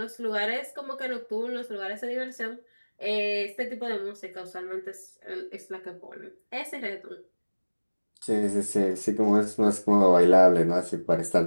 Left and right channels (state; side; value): inverted; both; correlation -1.00